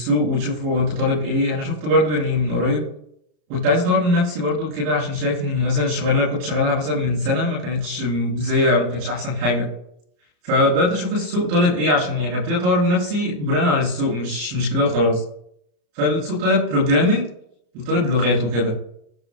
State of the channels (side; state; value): left; late; 34 ms